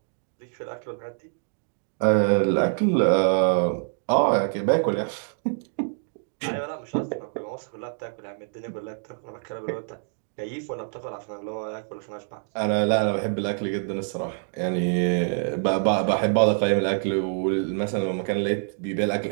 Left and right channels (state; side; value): silent; left; digital silence